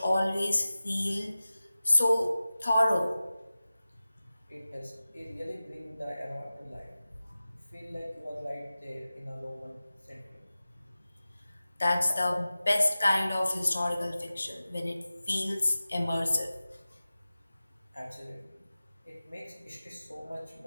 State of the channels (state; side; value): inverted; both; correlation -0.96